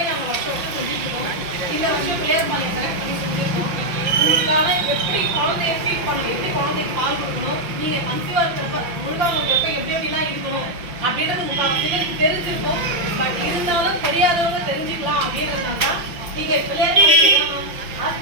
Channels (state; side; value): late; left; 5.9 ms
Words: நாங்கள் வருஷம் செஞ்சுட்டு இருக்கோம். இந்த வருஷம் பிள்ளையார் பாளையம் செலக்ட் பண்ணி செஞ்சுருக்கோம். உங்களுக்காக எப்படி குழந்தைய ஃபீட் பண்ணணும், எப்படி குழந்தைக்கு பால் கொடுக்கணும், நீங்க கன்சீவா இருக்கிறப்ப முழுகாம இருக்கிறப்ப எப்படிலாம் இருக்கணும் அப்படின்றது உங்களுக்கு தெரிஞ்சிருக்கும். பட் இருந்தாலும் தெரியாதவங்க தெரிஞ்சுக்கலாம் அப்படின்றதுனால தான் நீங்க பிள்ளையார்